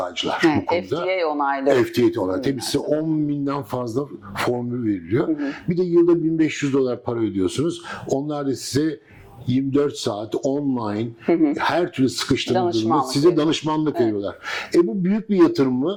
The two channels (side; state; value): both; identical; correlation 1.00